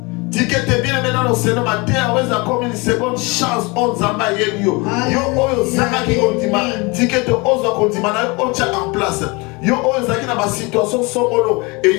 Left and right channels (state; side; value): quieter; right; 27.0 dB